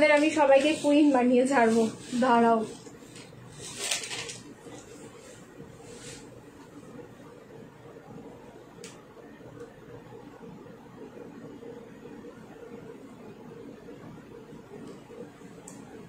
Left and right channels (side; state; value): both; identical; correlation 1.00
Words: আমি সবাইকে কুইন বানিয়ে ছাড়বো, দাঁড়াও।